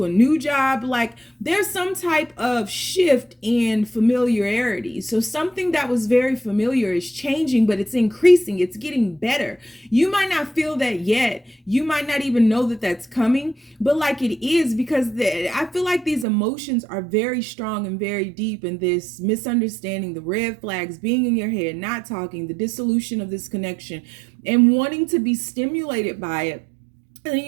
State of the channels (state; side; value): drops out; left; at 16.2 s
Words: a new job. Like there's some type of shift in familiarity. So something that was very familiar is changing, but it's increasing. It's getting better. You might not feel that yet. You might not even know that that's coming, but like it is, because I feel like these emotions are very strong and very deep, and this misunderstanding, the red flags, being in your head, not talking, the dissolution of this connection, and wanting to be stimulated by it. And the